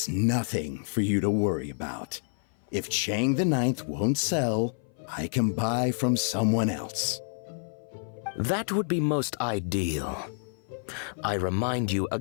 nothing for you to worry about. If Chang the Ninth won't sell, I can buy from someone else. That would be most ideal. I remind you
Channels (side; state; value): right; silent; 56 dB below the other